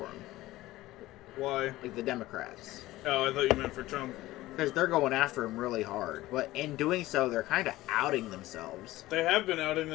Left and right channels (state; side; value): quieter; right; 17.1 dB